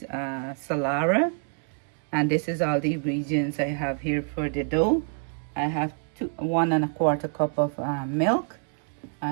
Salara, and this is all the ingredients I have here for the dough. I have 1¼ cup of milk. I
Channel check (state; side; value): silent; left; 60 dB below the other